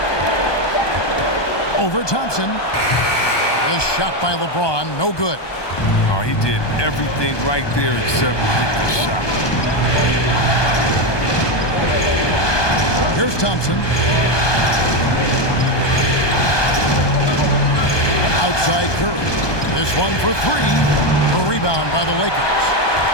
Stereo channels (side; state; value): right; late; 1.2 ms